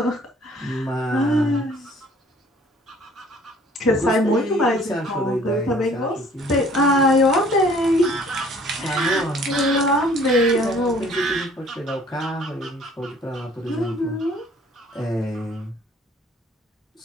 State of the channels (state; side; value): normal; both; correlation 0.55